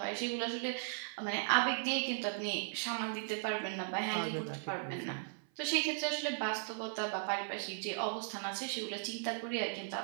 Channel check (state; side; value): silent; left; 53 dB below the other